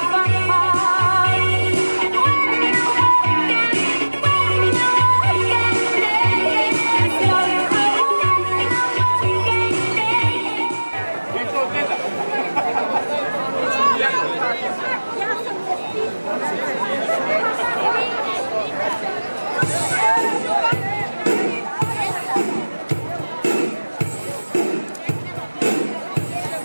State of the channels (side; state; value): both; inverted; correlation -1.00